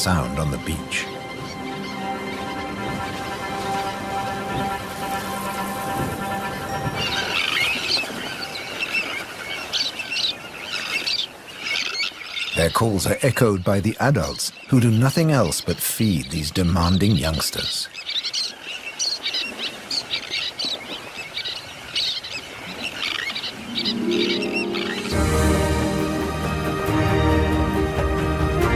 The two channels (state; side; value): identical; both; correlation 1.00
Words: on the beach. Their calls are echoed by the adults, who do nothing else but feed these demanding youngsters.